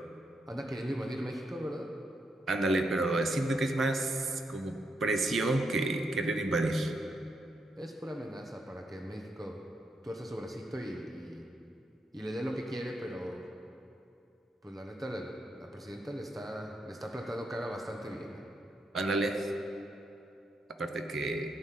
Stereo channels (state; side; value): normal; both; correlation 0.81